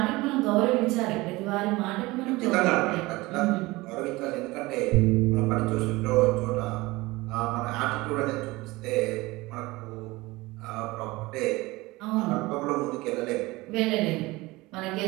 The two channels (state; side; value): quieter; left; 21.1 dB